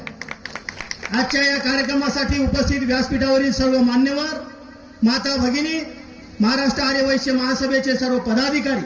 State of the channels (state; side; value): identical; both; correlation 1.00